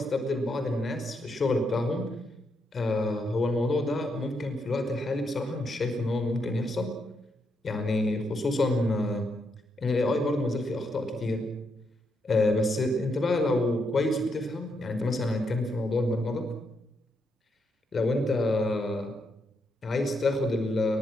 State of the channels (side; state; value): both; normal; correlation 0.79